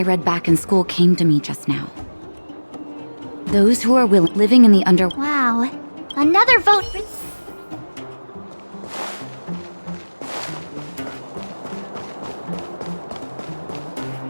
read back in school came to me just now. Those who are living in the under... Wow. Another vote for...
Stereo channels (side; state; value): both; inverted; correlation -1.00